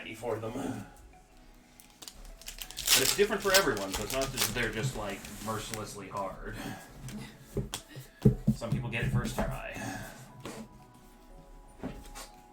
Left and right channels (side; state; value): both; identical; correlation 1.00